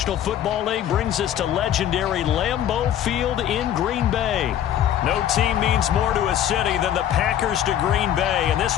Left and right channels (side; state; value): right; quieter; 10.7 dB